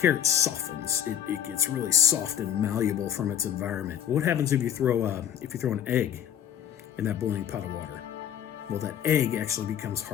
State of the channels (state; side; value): quieter; right; 9.7 dB